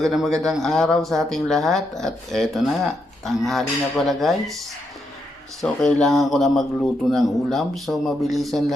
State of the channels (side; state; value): both; normal; correlation 0.81